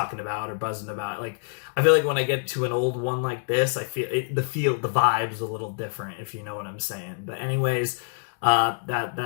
about or buzzing about. Like, I feel like when I get to an old one like this, I feel the vibe's a little different, if you know what I'm saying. But anyways,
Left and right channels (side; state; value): right; silent; digital silence